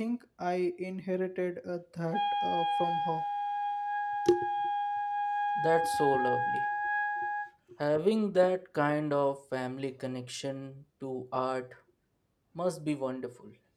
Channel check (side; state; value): both; identical; correlation 1.00